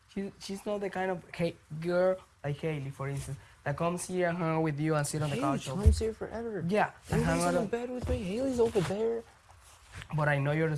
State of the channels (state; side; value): identical; both; correlation 1.00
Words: she's not the kind of girl like Haley, for instance, that comes here and hang out with you and sit on the Haley couch. comes here forever. Yeah, and hang Haley's out. in bed with me. Haley's over there. But I know you're a